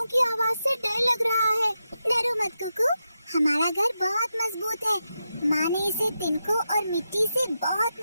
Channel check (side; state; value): both; inverted; correlation -0.88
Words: की आवाज से डर लग रहा है। डरो मत कुकू, हमारा घर बहुत मजबूत है। माँ ने इसे तिनकों और मिट्टी से बहुत